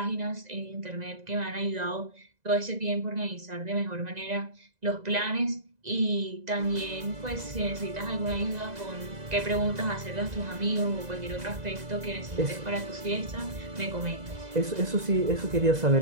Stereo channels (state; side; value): late; left; 2.0 ms